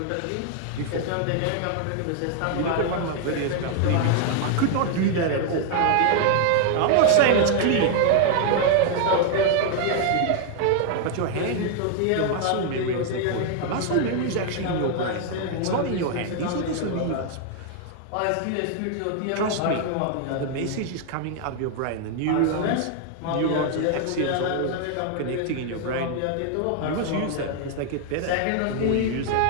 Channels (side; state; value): both; different; correlation 0.00